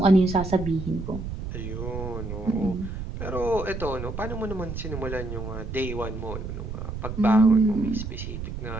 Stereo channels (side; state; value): right; noise; rumble, 7 dB below the sound